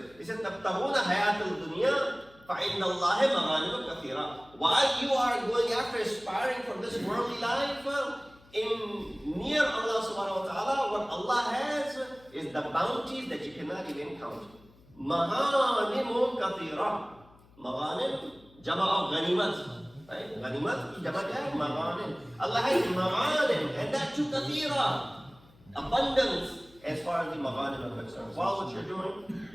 It says, تَبْتَغُونَ حَيَاةَ الدُّنْيَا فَإِنَّ اللَّهِ مَغَانِمُ كَثِيرًا. While you are going after aspiring for this worldly life, in near Allah subhanahu wa ta'ala, what Allah has is the bounties that you cannot even count. Maghanimun kathira. Maghanim, jama of ganimat. Right? Ganimat ki jama kya hai? Maghanim. Allah has maghanim, and that too kathira. Abundance as far as the maghanim are concerned. While what you're doing,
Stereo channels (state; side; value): noise; left; hum, 27 dB below the sound